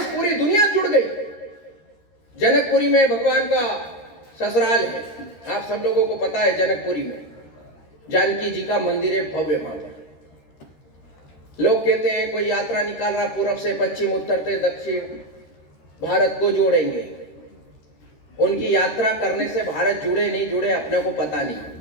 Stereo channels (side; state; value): right; late; 13 ms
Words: पूरी दुनिया जुड़ गई। जनकपुरी में भगवान का ससुराल है, आप सब लोगों को पता है। जनकपुरी में जानकी जी का मंदिर है, भव्य भव्य। लोग कहते हैं कोई यात्रा निकाल रहा, पूर्व से पश्चिम, उत्तर से दक्षिण, भारत को जोड़ेंगे। उनकी यात्रा करने से भारत जुड़े नहीं जुड़े अपने को पता नहीं,